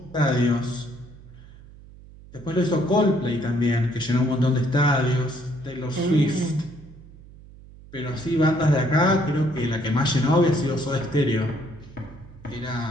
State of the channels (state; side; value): noise; right; hum, 20 dB below the sound